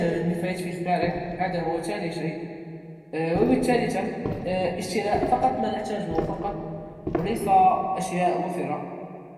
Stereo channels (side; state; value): both; identical; correlation 1.00